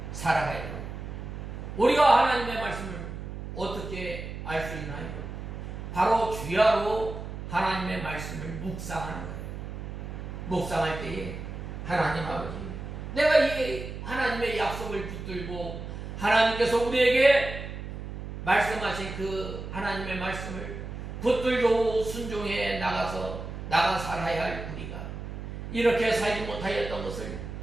살아가야 돼요. 우리가 하나님의 말씀을 어떻게 알 수 있나요? 바로 주야로 하나님의 말씀을 묵상하는 거예요. 묵상할 때에 하나님 아버지, 내가 이 하나님의 약속을 붙들고 하나님께서 우리에게 말씀하신 그 하나님의 말씀을 붙들고 순종해 나가 살아야 할 우리가 이렇게 살지 못하였던 것을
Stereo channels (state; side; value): noise; right; hum, 8 dB below the sound